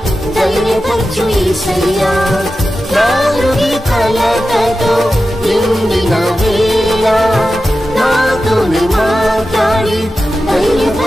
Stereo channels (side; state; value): both; normal; correlation 0.93